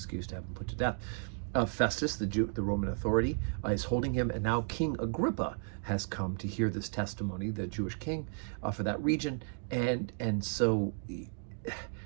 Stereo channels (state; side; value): silent; left; 55 dB below the other